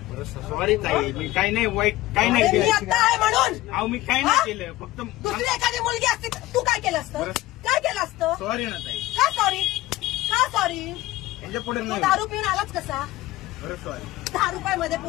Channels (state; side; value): quieter; right; 17.2 dB